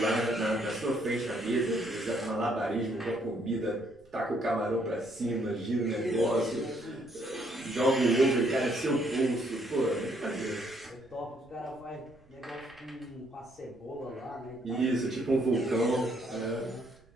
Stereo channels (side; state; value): right; noise; rumble, 28 dB below the sound